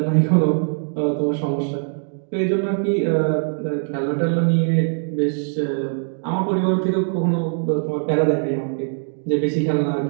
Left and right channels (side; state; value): left; silent; 65 dB below the other